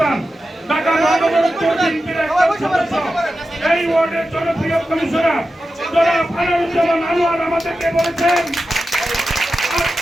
ঢাকা মহানগর বিএনপির একজন সদস্য, এই ওয়ার্ডের জনপ্রিয় কমিশনার জনাব আনোয়ারুজ্জামান আনোয়ার আমাদেরকে বলেছেন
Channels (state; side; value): normal; both; correlation 0.92